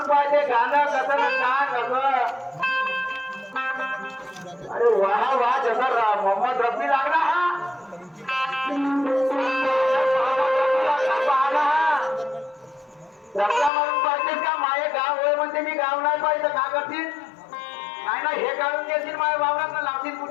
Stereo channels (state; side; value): drops out; right; at 13.7 s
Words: पाहिजे गाणं कसं ना कसं. अरे वाह वाह, जसा मोहम्मद रफी लागला हा. रस्ता म्हणून पाहिजे का? माये गाव होय म्हणते मी गाव नाही पाहिजे का करतील? नाही ना, हे काढून घेतील माझ्या वावरात लावतील